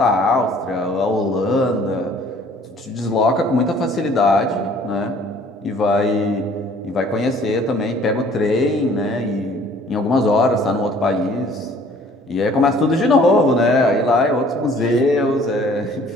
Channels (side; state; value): both; normal; correlation 0.55